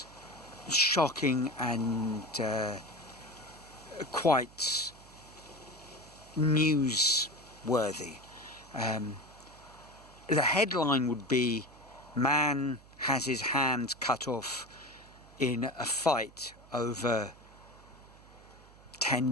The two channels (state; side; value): noise; right; hum, 23 dB below the sound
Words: shocking and quite newsworthy. The headline would be, "Man has his hands cut off in a fight over